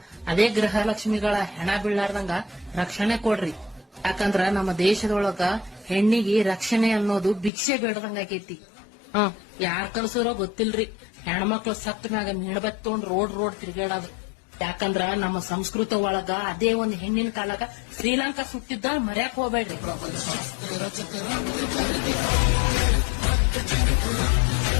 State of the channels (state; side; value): drops out; right; at 7.5 s